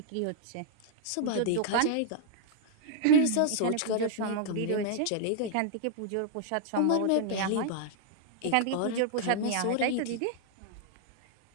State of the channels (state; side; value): different; both; correlation -0.01